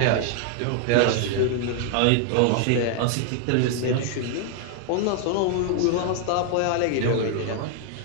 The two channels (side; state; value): both; different; correlation 0.00